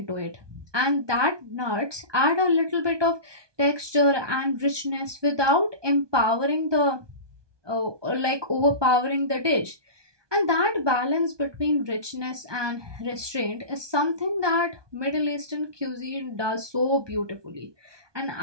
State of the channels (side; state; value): left; late; 1.2 ms